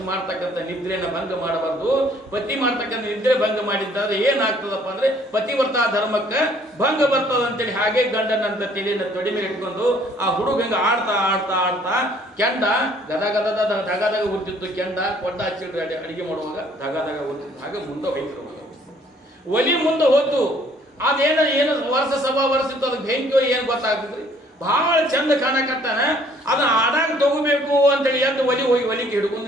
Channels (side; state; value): both; normal; correlation 0.60